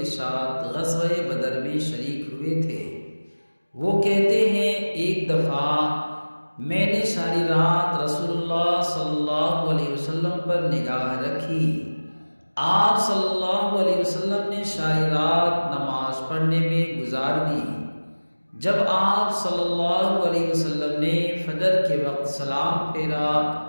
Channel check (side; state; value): both; inverted; correlation -1.00